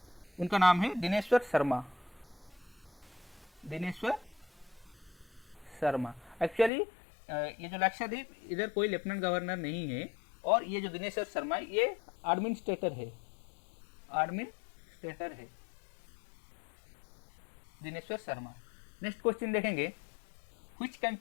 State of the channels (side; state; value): right; drops out; at 6.7 s